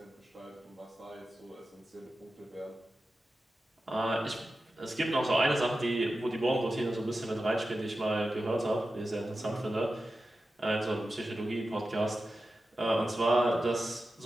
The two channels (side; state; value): both; normal; correlation 0.92